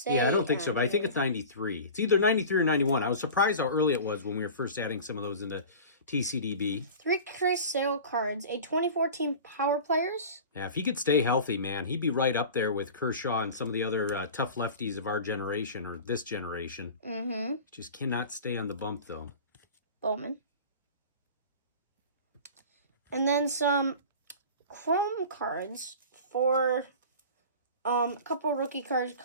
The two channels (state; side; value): inverted; both; correlation -0.36